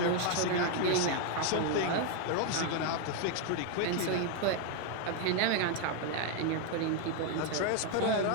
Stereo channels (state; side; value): different; both; correlation 0.01